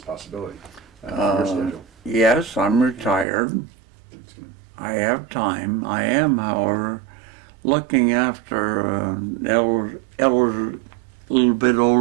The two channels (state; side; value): drops out; left; at 3.2 s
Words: possibility, for your schedule. Yes, I'm retired. I have time. I am, however, looking after an elder, little bit